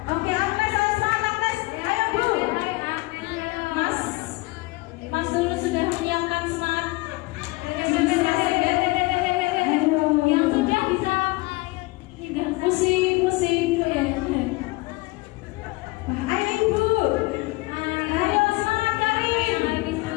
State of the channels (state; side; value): quieter; right; 22.8 dB